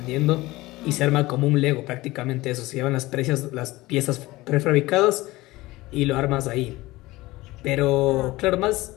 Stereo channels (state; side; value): quieter; right; 19.4 dB